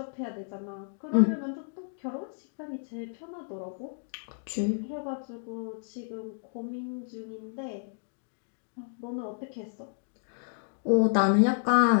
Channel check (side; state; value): right; silent; digital silence